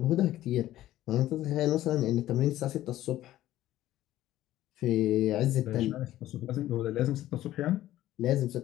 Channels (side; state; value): right; quieter; 14.2 dB